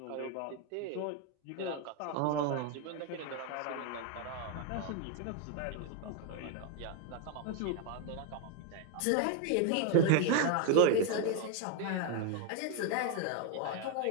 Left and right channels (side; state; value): both; different; correlation 0.01